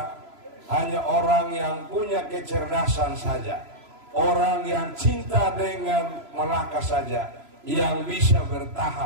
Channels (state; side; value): late; left; 3.0 ms